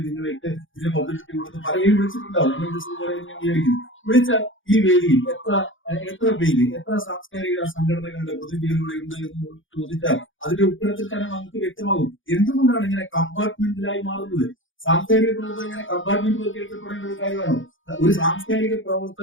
നിങ്ങളിട്ട് ഇതിന് പബ്ലിസിറ്റി കൊടുത്ത് പലരും വിളിച്ചിട്ടുണ്ടാവും. എന്നെ വിളിച്ചതുപോലെ ഞാൻ വിചാരിക്കുന്നു. വിളിച്ച ഈ വേദിയിൽ എത്ര പേര്, എത്ര സാംസ്കാരിക സംഘടനകളുടെ പ്രതിനിധികളുടെ ഉണ്ട് എന്ന് ചോദിച്ചാൽ അതിന്റെ ഉത്തരത്തിൽ തന്നെ നമുക്ക് വ്യക്തമാകും എന്തുകൊണ്ടാണ് ഇങ്ങനെ കമ്പാർട്ട്മെന്റിലായി മാറുന്നത്. സാംസ്കാരിക പ്രവർത്തകർ ഇങ്ങനെ കമ്പാർട്ട്മെന്റിലേക്ക് എത്തപ്പെടേണ്ട ഒരു കാര്യമാണോ? ഒരു സാംസ്കാരിക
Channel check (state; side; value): late; right; 0.57 ms